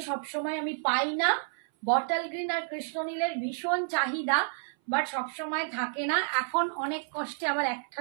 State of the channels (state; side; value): silent; left; 58 dB below the other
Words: সবসময় আমি পাই না। বটল গ্রিন আর কৃষ্ণ নীলের ভীষণ চাহিদা, বাট সবসময় থাকে না। এখন অনেক কষ্টে আবার